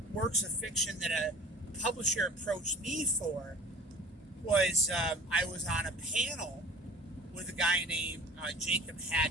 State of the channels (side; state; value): both; normal; correlation 0.43